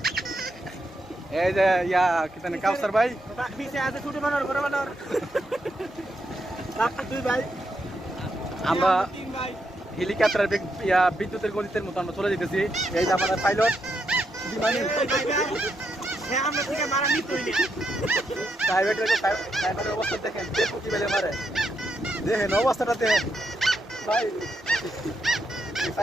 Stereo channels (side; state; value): both; normal; correlation 0.81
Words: এই যে ইয়া কি জানি কাউসার ভাই পিছে আছে ছুটি বানার ঘরে বানার আপনি দুই ভাই আমরা তিন ভাই হেলিকপ্টার বিদ্যুতের গতিতের মতো আমরা চলে যেতেছি এই যে আমাদের পাইলট বিমানি হ্যাঁ আমরা থেকে মারা নিতেই না প্রাইভেটের অবস্থা দেখেন যে প্রতি বেলে মারে দেখেন অবস্থাটা দেখেন ভাই